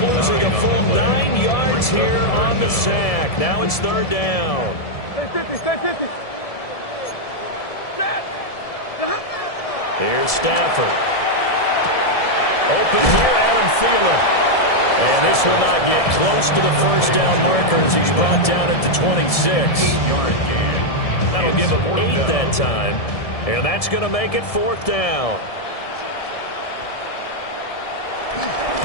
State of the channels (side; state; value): right; late; 1.7 ms